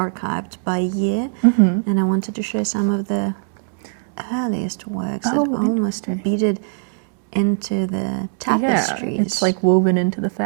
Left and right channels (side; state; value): left; silent; 65 dB below the other